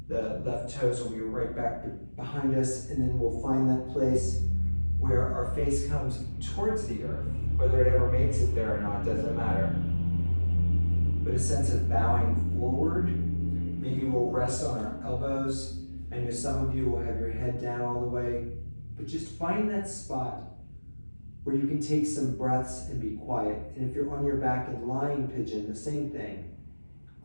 The left toes will be right back behind us, and then we'll find that place where our face comes towards the earth. Whether it ever makes it there or not doesn't matter. But a sense of bowing forward. Maybe we'll rest on our elbows. I know some of you will have your head down all the way, but just find that spot where you can take some breaths and be quiet. And if you're on your back in lying pigeon, the same thing.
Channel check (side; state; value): both; inverted; correlation -1.00